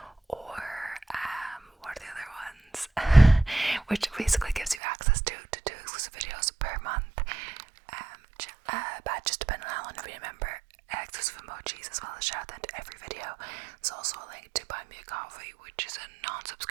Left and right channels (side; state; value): left; drops out; at 4.8 s